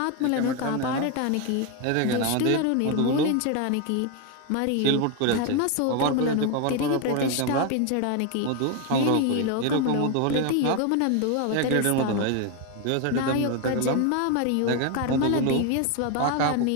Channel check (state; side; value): different; both; correlation 0.01